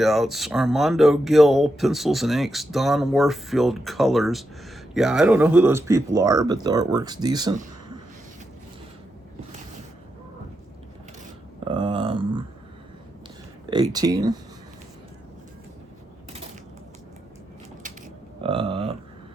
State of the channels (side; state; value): both; normal; correlation 0.85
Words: Armando Gill, pencils and inks. Don Warfield, colors. Yeah, I don't know who those people are, but the artwork's decent. 18.